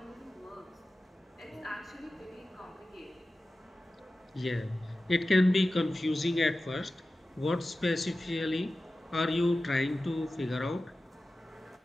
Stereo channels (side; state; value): both; normal; correlation 0.95